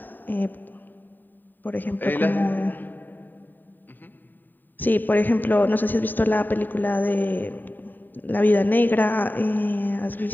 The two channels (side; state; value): right; late; 0.090 ms